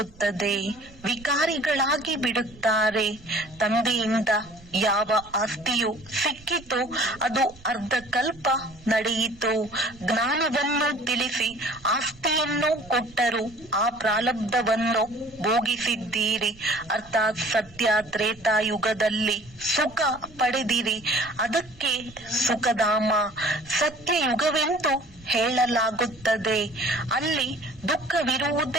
ವಿಕಾರಿಗಳಾಗಿ ಬಿಡುತ್ತಾರೆ. ತಂದೆಯಿಂದ ಯಾವ ಆಸ್ತಿಯು ಸಿಕ್ಕಿತು ಅದು ಅರ್ಧಕಲ್ಪ ನಡೆಯಿತು. ಜ್ಞಾನವನ್ನು ತಿಳಿಸಿ ಆಸ್ತಿಯನ್ನು ಕೊಟ್ಟರು. ಆ ಪ್ರಾರಬ್ಧವನ್ನು ಭೋಗಿಸಿದ್ದೀರಿ. ಅರ್ಥಾತ್ ಸತ್ಯ ತ್ರೇತಾಯುಗದಲ್ಲಿ ಸುಖ ಪಡೆದಿರಿ. ಅದಕ್ಕೆ ಸುಖಧಾಮ ಸತ್ಯಯುಗವೆಂದು ಹೇಳಲಾಗುತ್ತದೆ. ಅಲ್ಲಿ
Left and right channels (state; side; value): noise; right; rumble, 22 dB below the sound